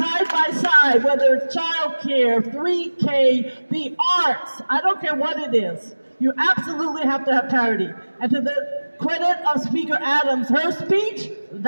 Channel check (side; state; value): both; inverted; correlation -1.00